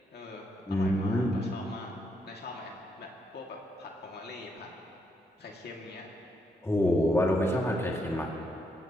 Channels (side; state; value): both; normal; correlation 0.77